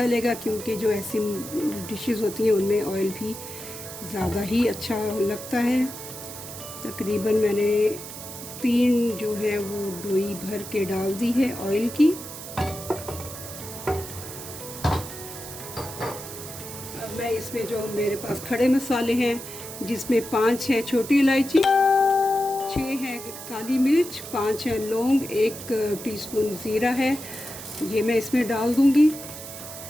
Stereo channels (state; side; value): noise; right; hiss, 11 dB below the sound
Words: क्योंकि जो ऐसी डिशेस होती हैं उनमें ऑयल भी ज़्यादा ही अच्छा लगता है। तकरीबन मैंने 3 जो है वो डोई भर के डाल दी है ऑयल की। अब मैं इसमें जो मेरे पास खड़े मसाले हैं, जिसमें 5 है छोटी इलायची, 6 है काली मिर्च, 5 है लौंग, 1 टीस्पून ज़ीरा है, ये मैं इसमें डाल दूंगी।